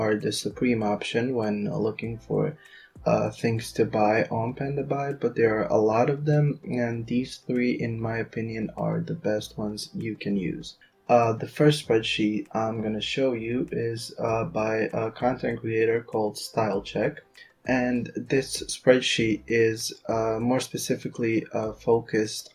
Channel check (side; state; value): both; identical; correlation 1.00